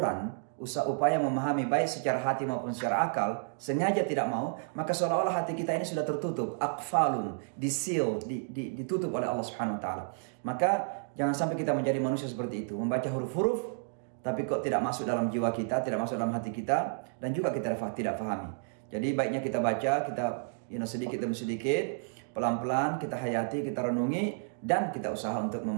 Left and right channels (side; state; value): left; silent; digital silence